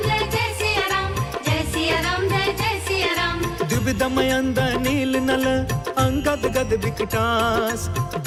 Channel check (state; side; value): identical; both; correlation 1.00